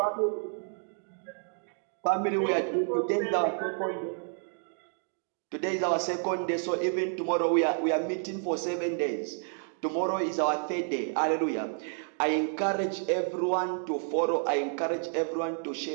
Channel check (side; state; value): left; silent; 56 dB below the other